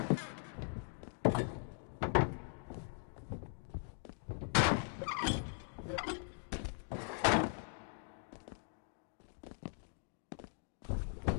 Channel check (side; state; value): right; silent; 51 dB below the other